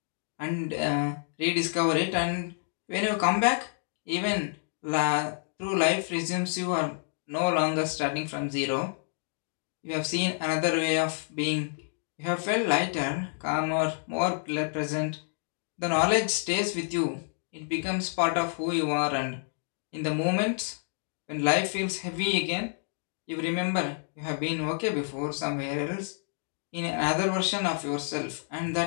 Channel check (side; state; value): right; silent; digital silence